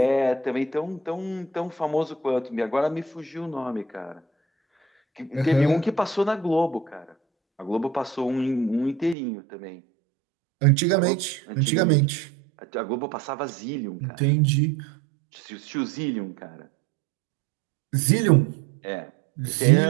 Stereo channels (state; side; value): drops out; left; at 9.2 s